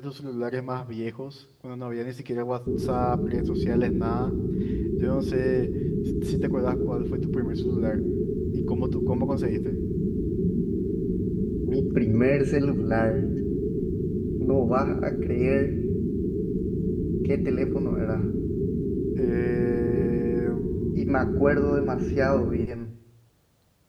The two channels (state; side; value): identical; both; correlation 1.00